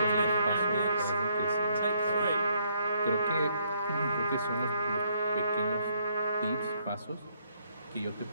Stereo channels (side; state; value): both; inverted; correlation -0.69